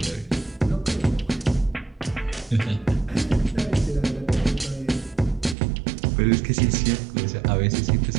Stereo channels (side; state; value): left; drops out; at 5.6 s